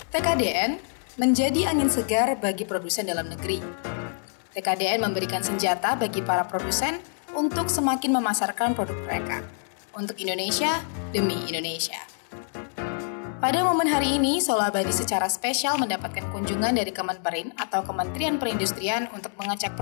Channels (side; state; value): right; silent; 61 dB below the other